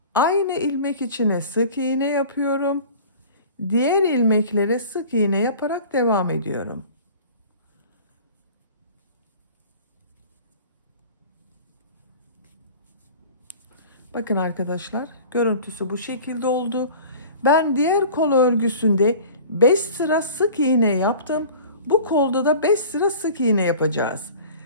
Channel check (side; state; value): both; inverted; correlation -0.43